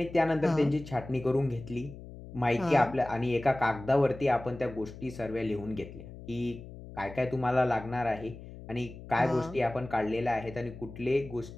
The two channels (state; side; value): noise; left; hum, 14 dB below the sound